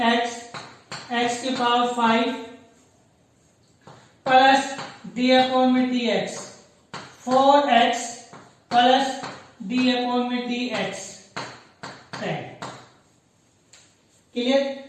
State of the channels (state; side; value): identical; both; correlation 1.00